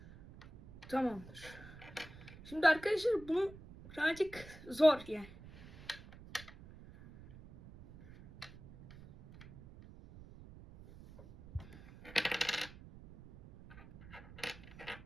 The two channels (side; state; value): right; noise; rumble, 18 dB below the sound